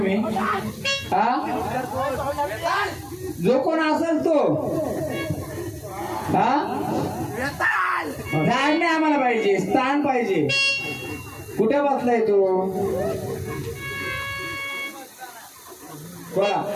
हा, जो कोण असेल तो हा झाड नाही आम्हाला पाहिजे, स्थान पाहिजे. कुठे बसलाय तो? बोला.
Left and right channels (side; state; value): both; identical; correlation 1.00